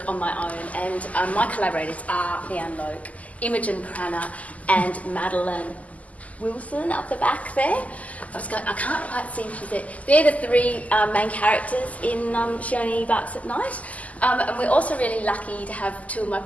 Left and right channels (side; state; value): right; late; 0.073 ms